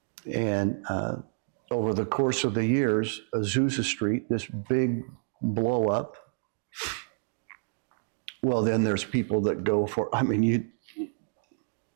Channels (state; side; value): silent; left; digital silence